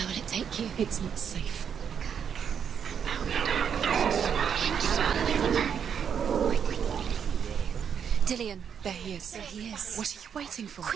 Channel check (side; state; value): left; quieter; 7.7 dB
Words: will it take you? It's not safe. Dillion. There he is. There he is. What are you waiting for?